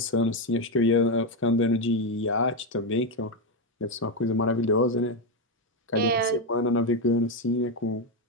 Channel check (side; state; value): both; normal; correlation 0.08